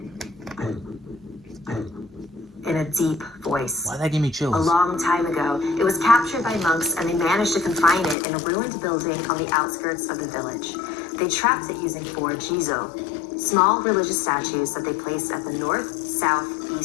in a deep voice. Why that give me chills? A long time ago, it was captured by monks and they managed to confine it in a ruined building on the outskirts of the village. They trapped it using 4 jizo, small religious statues that they placed at the north, south,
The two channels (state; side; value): drops out; right; at 8.2 s